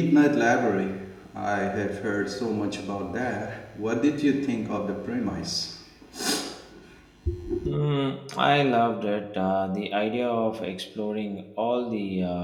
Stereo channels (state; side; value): identical; both; correlation 1.00